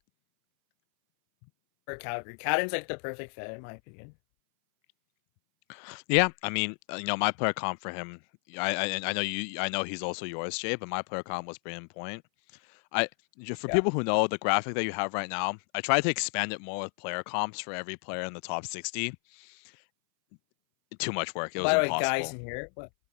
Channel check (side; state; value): right; silent; 57 dB below the other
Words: Calgary, Cadden's like the perfect fit in my opinion. Yeah, I mean, my player comp for him. I know he's also yours, Jay, but my player comp was Brayden Point. People who know the graphic that you have right now, I tried to expand it more with player comps for every player in the top 60. Too much work. It was impossible. By the way, guys in here,